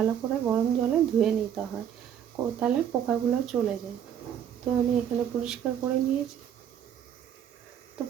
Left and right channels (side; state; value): left; quieter; 9.2 dB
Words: করে গরম জলে ধুয়ে নিতে হয়, তাহলে পোকাগুলো চলে যায়। তো আমি এখানে পরিষ্কার করে নিয়েছি। তো